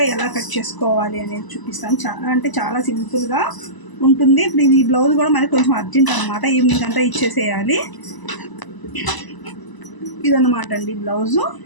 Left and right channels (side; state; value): right; late; 1.0 ms